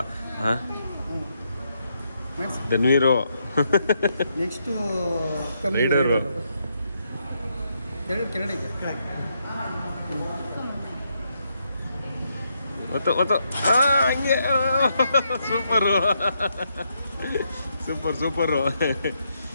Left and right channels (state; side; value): inverted; both; correlation -0.78